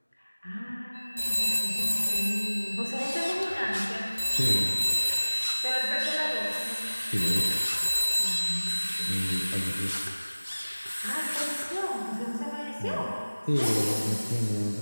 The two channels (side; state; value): both; inverted; correlation -1.00